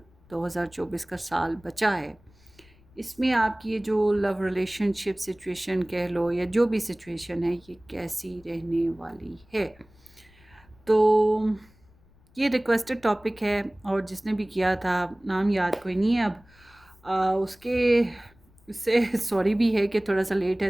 2024 का साल बचा है, इसमें आपकी ये जो लव रिलेशनशिप सिचुएशन कह लो या जो भी सिचुएशन है, ये कैसी रहने वाली है। तो ये रिक्वेस्टेड टॉपिक है और जिसने भी किया था नाम याद कोई नहीं है अब। उसके उससे सॉरी भी है कि थोड़ा सा लेट है,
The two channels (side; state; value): left; noise; rumble, 29 dB below the sound